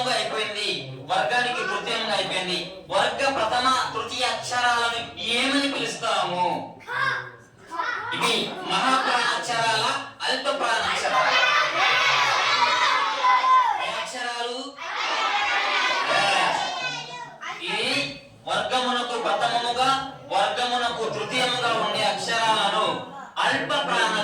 అయిపోయింది, వర్గానికి తృతీయంగా అయిపోయింది. వర్గ ప్రథమ తృతీయ అక్షరాలను ఏమని పిలుస్తాము? ఇవి మహాప్రాణాక్షరాల, అల్ప ప్రాణాక్షరాల అక్షరాలు. ఇది వర్గమునకు ప్రథమముగా, వర్గమునకు తృతీయముగా ఉండే అక్షరాలను అల్ప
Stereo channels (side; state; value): both; identical; correlation 1.00